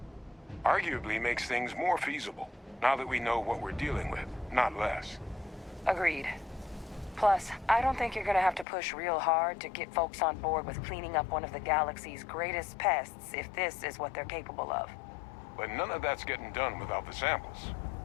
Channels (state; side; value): drops out; right; at 8.7 s